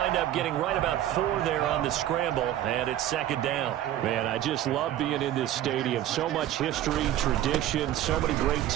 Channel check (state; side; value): quieter; left; 12.6 dB